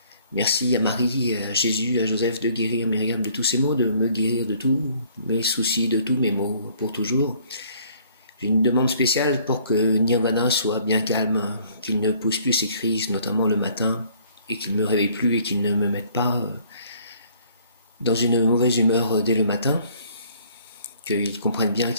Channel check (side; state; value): both; inverted; correlation -0.59